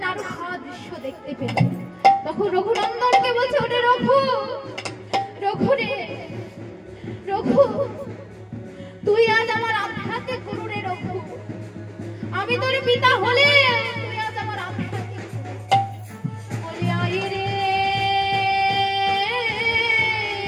নাড়ু খাওয়া দৃশ্য দেখতে পেল। তখন রঘুনন্দনকে বলছে ওরে রঘু, রঘু রে রঘু, তুই আজ আমার আধ্যাত্মিক গুরু রে রঘু। আমি তোর পিতা হলে তুই আজ আমার আধ্যাত্মিক বলে আয় রে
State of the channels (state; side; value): identical; both; correlation 1.00